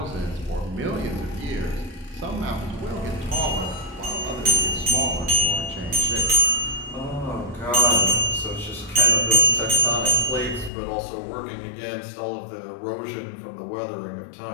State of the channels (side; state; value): right; drops out; at 10.7 s